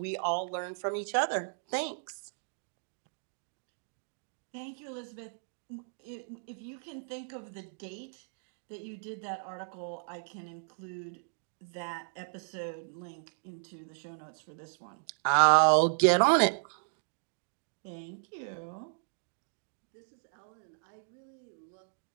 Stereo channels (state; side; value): silent; left; digital silence